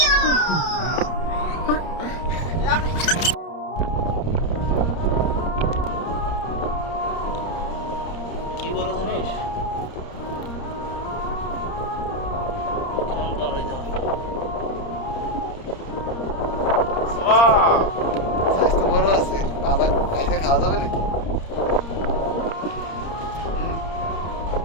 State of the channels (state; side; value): late; right; 30 ms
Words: বড় জিনিস স্বাস্থ্য বড় আছে, বাজার খাইতে খাওয়া যাবে নাকি?